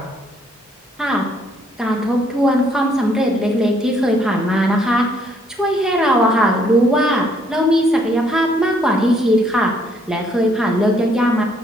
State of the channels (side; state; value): both; normal; correlation 0.67